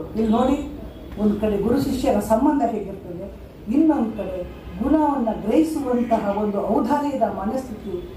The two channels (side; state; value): both; identical; correlation 1.00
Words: ಇಲ್ಲಿ ನೋಡಿ, ಒಂದು ಕಡೆ ಗುರು ಶಿಷ್ಯರ ಸಂಬಂಧ ಹೇಗಿರ್ತದೆ, ಇನ್ನೊಂದು ಕಡೆ ಗುಣವನ್ನು ಗ್ರಹಿಸುವಂತಹ ಒಂದು ಔದಾರ್ಯದ ಮನಸ್ಥಿತಿ